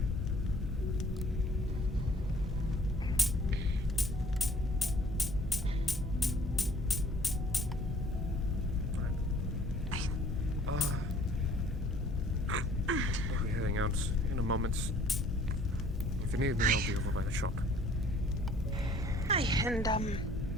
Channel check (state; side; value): normal; both; correlation 0.56